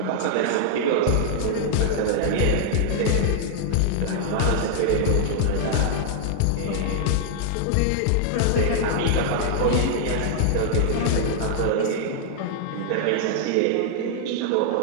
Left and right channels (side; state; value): both; different; correlation -0.01